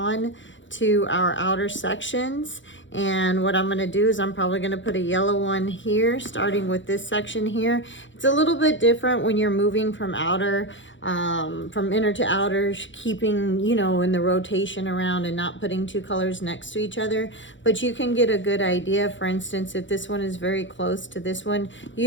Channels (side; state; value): right; late; 0.55 ms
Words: to our outer sections. And what I'm going to do is I'm probably going to put a yellow one here, starting with this section here. It's a little bit different when you're moving from outer, from inner to outer, keeping, you know, in the rotation around and not putting 2 colors next to each other. But you can get a good idea. For instance, if this one is very close to this one,